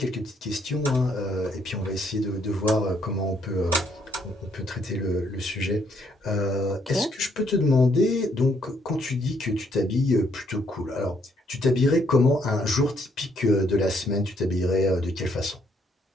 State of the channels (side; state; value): both; normal; correlation 0.70